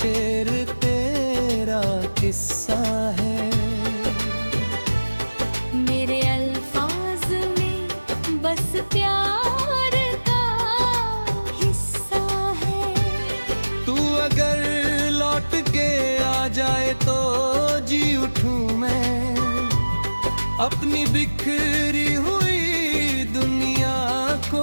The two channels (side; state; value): both; inverted; correlation -1.00